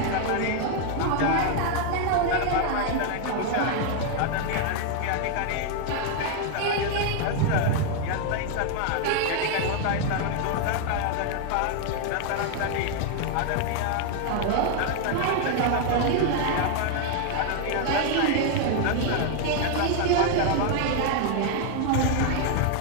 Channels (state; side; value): different; both; correlation 0.00